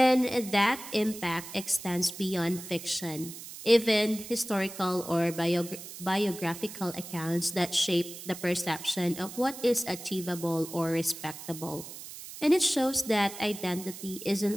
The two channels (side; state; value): right; noise; hiss, 12 dB below the sound